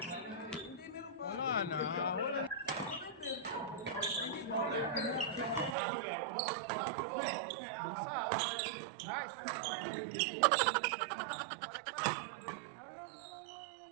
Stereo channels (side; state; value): left; drops out; at 5.8 s